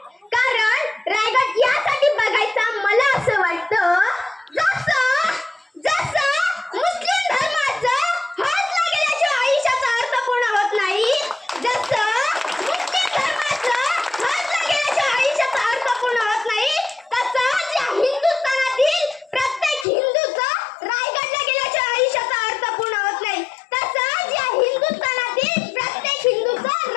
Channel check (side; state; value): right; drops out; at 19.9 s